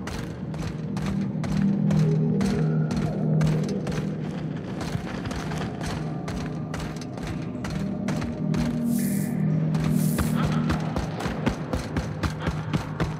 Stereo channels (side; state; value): both; identical; correlation 1.00